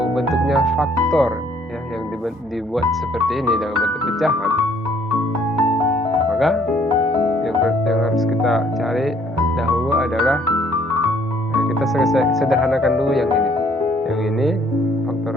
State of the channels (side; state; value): both; normal; correlation 0.62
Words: bentuknya faktor ya, yang dibuat seperti ini dalam bentuk pecahan, maka yang harus kita cari dahulu adalah kita sederhanakan dulu yang ini. Yang ini